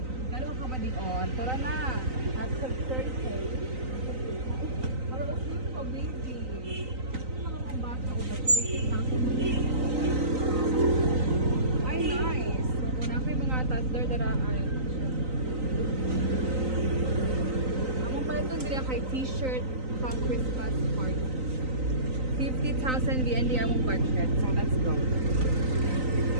Dalo ka ba di on? Tura na. At sa 30K. Para usod ko baby. Mga bata o ba ay nice. So na kay mga toddler daraan. Ito nila kay t-shirt pang Christmas party. 50,000 VND among budget. So let's go.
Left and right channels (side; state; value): left; late; 3.9 ms